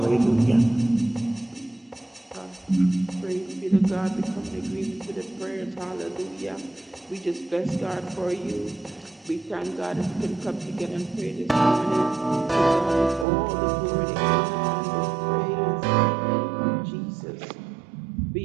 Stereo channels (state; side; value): drops out; left; at 13.2 s